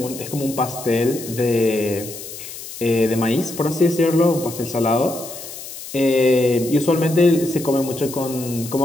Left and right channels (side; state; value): left; noise; hiss, 12 dB below the sound